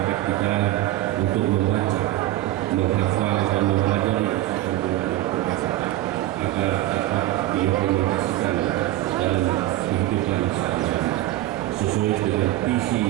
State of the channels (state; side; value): quieter; left; 15.4 dB